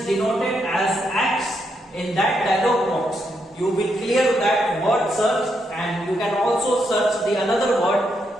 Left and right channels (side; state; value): both; normal; correlation 0.80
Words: denoted as X in that dialog box. You will clear that word search, and you can also search the another word